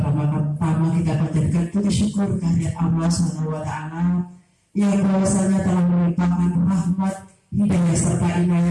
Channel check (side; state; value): both; identical; correlation 1.00